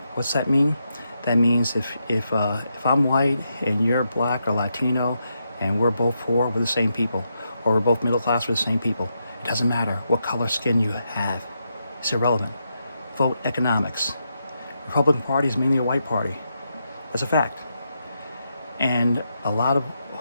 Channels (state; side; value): inverted; both; correlation -0.83